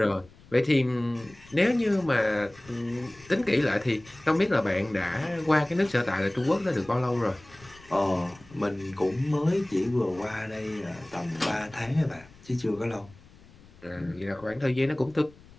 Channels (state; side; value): noise; left; rumble, 24 dB below the sound